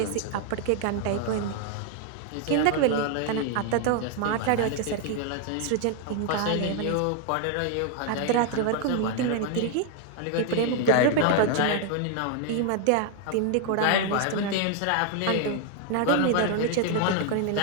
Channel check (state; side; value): different; both; correlation 0.00